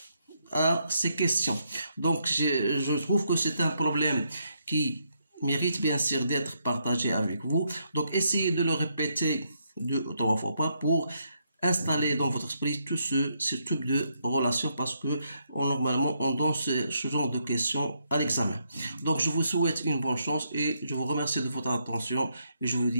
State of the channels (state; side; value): inverted; both; correlation -0.77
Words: à ces questions. Donc, je trouve que c'est un problème qui mérite bien sûr d'être partagé avec vous. Donc, essayez de le répéter 2 ou 3 fois pour installer dans votre esprit tout ce type de relation, parce que normalement on donne ce genre de questions à l'examen. Donc, je vous souhaite une bonne chance et je vous remercie de votre attention et je vous